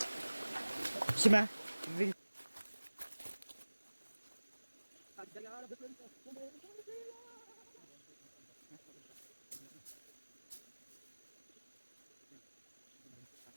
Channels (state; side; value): inverted; both; correlation -1.00